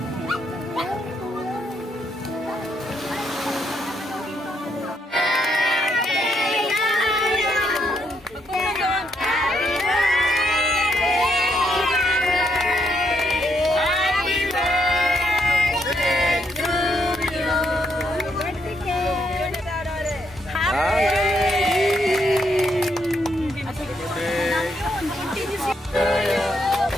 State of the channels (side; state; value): both; normal; correlation 0.76